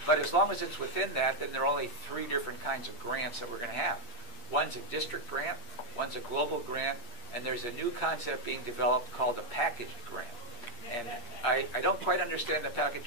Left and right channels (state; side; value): late; right; 8.5 ms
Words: But as long as it's within that, then there are only 3 different kinds of grants that we're going to have. One's a district grant, one's a global grant, and there's a new concept being developed called a packaged grant. And I don't quite understand the